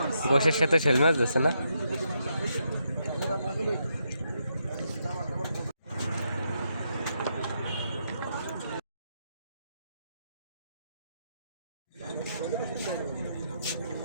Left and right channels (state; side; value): inverted; both; correlation -0.80